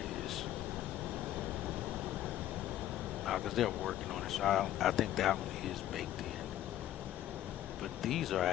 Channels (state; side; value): quieter; right; 12.8 dB